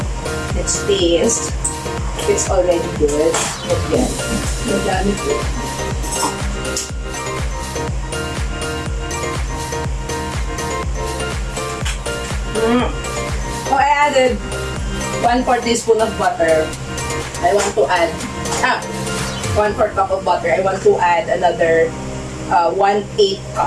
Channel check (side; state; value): both; identical; correlation 1.00